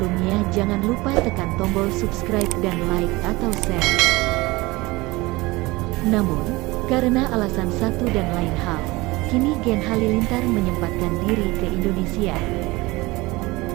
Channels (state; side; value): quieter; left; 21.7 dB